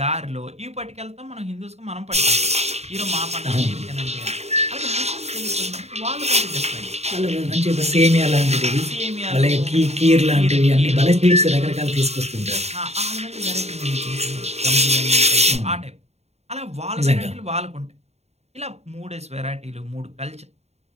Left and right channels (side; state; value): left; late; 0.31 ms